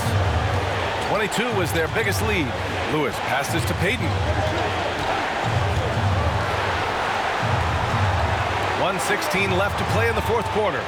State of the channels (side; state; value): both; identical; correlation 1.00